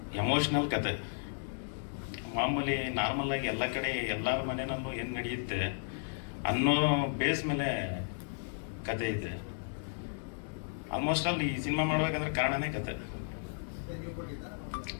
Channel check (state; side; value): silent; right; digital silence